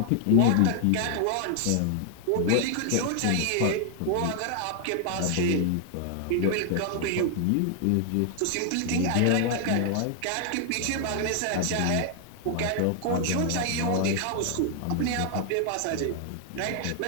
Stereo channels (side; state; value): both; different; correlation 0.00